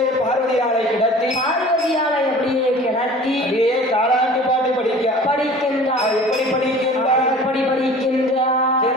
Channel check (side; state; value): both; normal; correlation 0.44